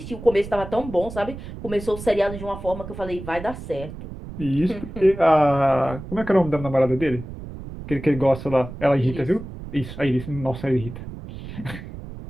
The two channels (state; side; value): noise; right; rumble, 11 dB below the sound